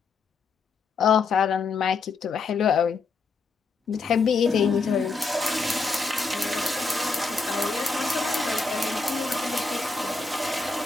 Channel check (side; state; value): right; quieter; 4.2 dB